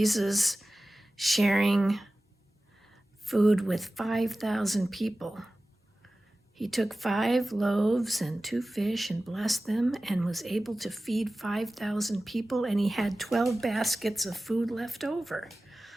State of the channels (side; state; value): both; normal; correlation 0.96